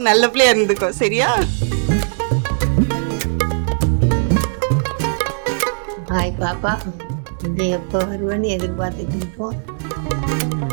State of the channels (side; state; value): left; silent; digital silence